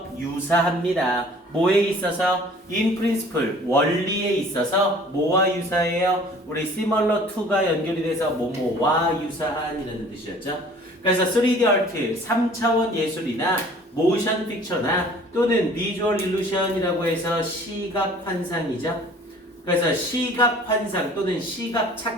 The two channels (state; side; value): normal; both; correlation 0.50